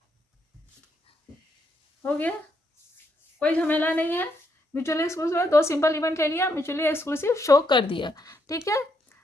हो गया, कोई झमेला नहीं है। म्यूचुअली एक्सक्लूसिव है, 2 सिंपल इवेंट ले लिया, म्यूचुअली एक्सक्लूसिव शो कर दिया। ठीक है,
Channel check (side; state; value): both; normal; correlation 0.76